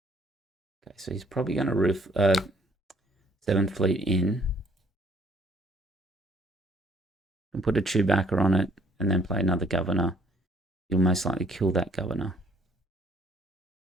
Okay, so he's probably going to roof 7th Fleet in. And put a Chewbacca on it and then play another governor. You'll most likely kill that governor.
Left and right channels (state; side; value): normal; both; correlation 0.63